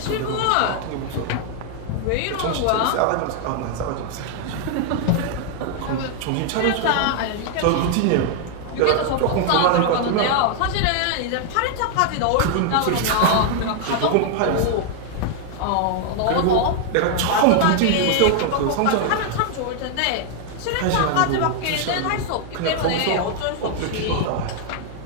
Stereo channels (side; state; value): both; different; correlation 0.00